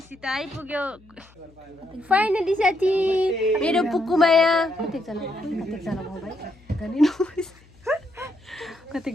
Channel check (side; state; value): left; noise; hum, 28 dB below the sound